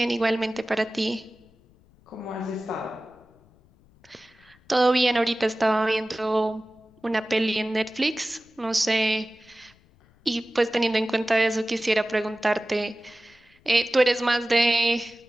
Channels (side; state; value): left; noise; rumble, 30 dB below the sound